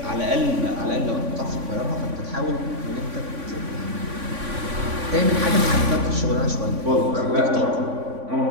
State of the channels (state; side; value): late; left; 3.5 ms